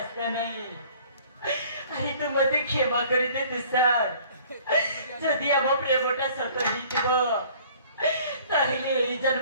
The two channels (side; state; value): both; inverted; correlation -0.53